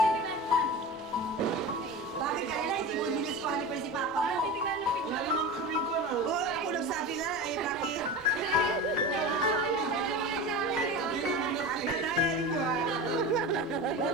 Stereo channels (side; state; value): both; normal; correlation 0.28